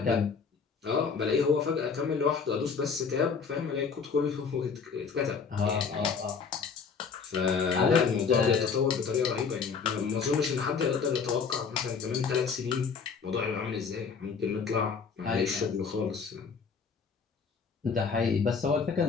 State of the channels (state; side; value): quieter; right; 5.7 dB